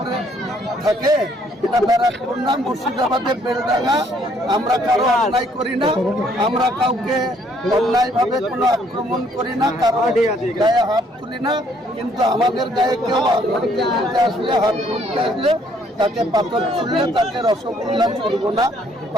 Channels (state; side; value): normal; both; correlation 0.65